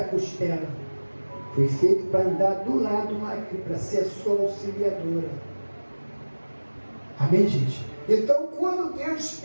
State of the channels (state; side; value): inverted; both; correlation -1.00